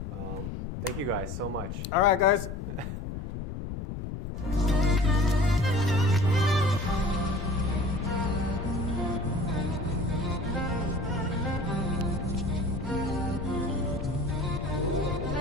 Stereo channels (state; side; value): noise; left; rumble, 6 dB below the sound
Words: Thank you guys so much. All right, guys.